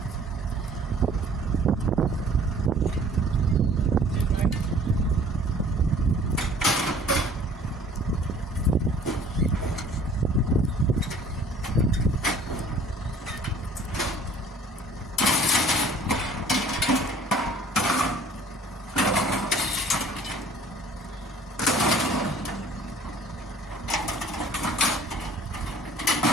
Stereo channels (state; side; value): normal; both; correlation 0.52